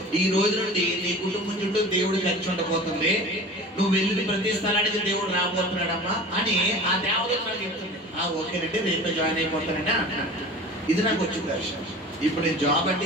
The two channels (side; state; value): both; normal; correlation 0.39